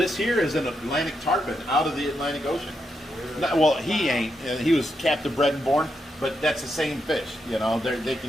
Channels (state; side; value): normal; both; correlation 0.83